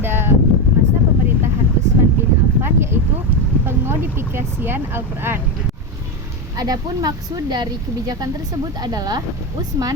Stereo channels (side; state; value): both; normal; correlation 0.13